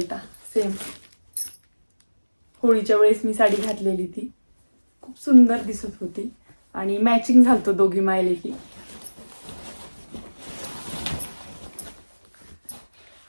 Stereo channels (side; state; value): both; inverted; correlation -1.00